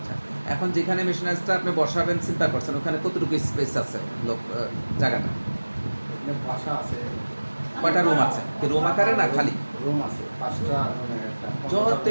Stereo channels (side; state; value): both; inverted; correlation -1.00